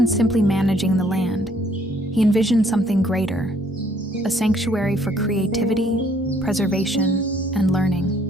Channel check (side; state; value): both; normal; correlation 0.64